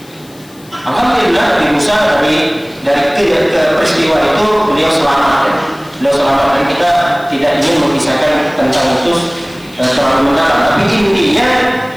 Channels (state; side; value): noise; left; hiss, 25 dB below the sound